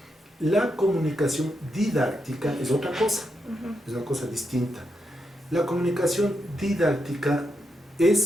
la comunicación didáctica es otra cosa, es una cosa distinta. La comunicación didáctica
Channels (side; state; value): both; normal; correlation 0.83